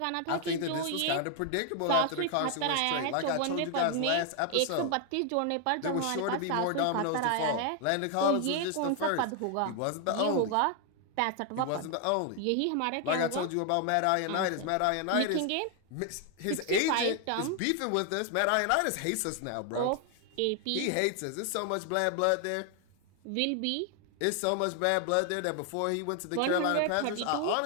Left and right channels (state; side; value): different; both; correlation 0.01